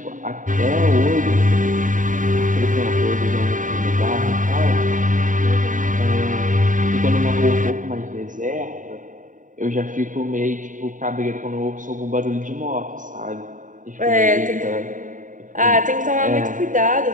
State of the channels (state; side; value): late; left; 0.38 ms